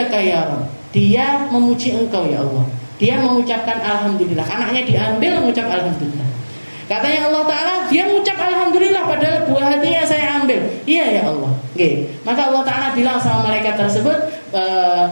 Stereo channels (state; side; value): inverted; both; correlation -1.00